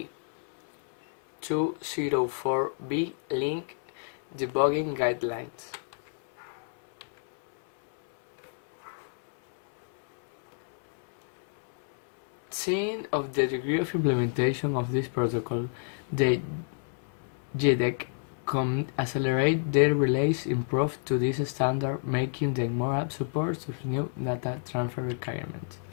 link debugging guidelines. Seeing of the degree of implementation of this protocol, the JEDEC can accelerate their release improved to this standard, making them more apt support to new data transfer requirements.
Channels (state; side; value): silent; right; 58 dB below the other